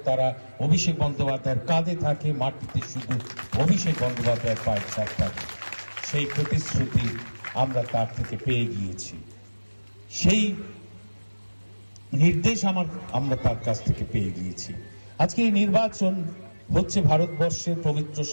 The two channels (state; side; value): inverted; both; correlation -1.00